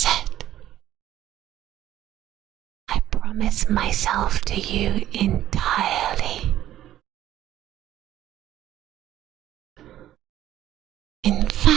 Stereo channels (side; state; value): left; quieter; 12.7 dB